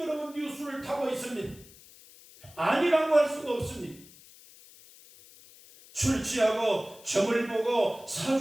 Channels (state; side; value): noise; left; hiss, 22 dB below the sound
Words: 뉴스를 타고 있습니다. 아니라고 할 수가 없습니다. 술 취하고 점을 보고